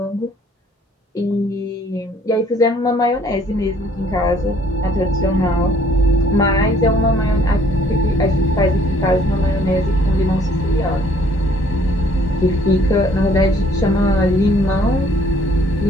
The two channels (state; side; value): normal; both; correlation 0.60